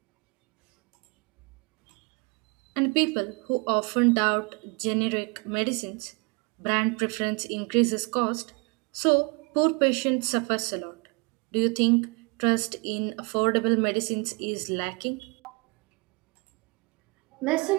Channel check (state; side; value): quieter; left; 30.6 dB